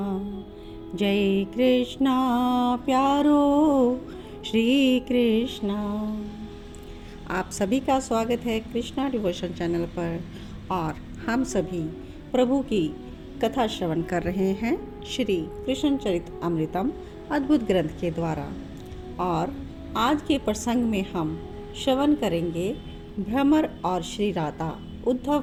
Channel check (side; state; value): both; identical; correlation 1.00